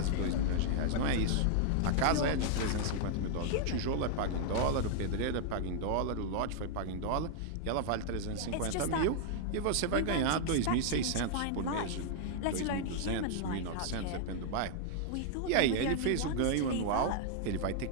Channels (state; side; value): different; both; correlation 0.00